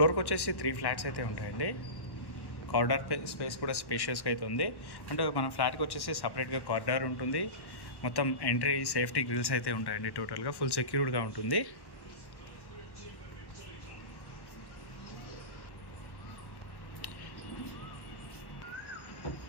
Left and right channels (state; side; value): late; right; 1.1 ms